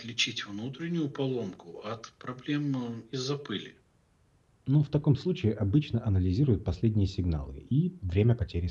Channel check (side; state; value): both; identical; correlation 1.00